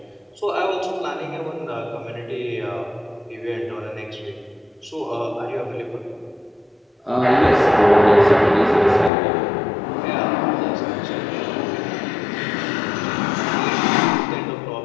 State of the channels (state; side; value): drops out; right; at 9.1 s